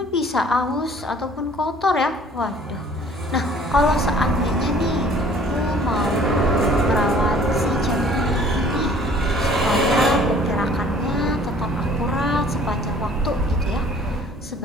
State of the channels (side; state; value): both; normal; correlation 0.53